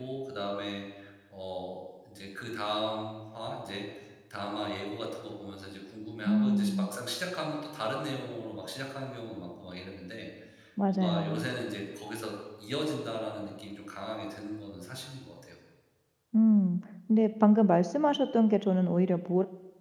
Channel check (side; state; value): both; identical; correlation 1.00